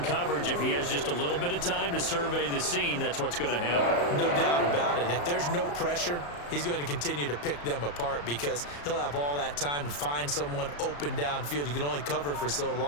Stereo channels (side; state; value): right; late; 34 ms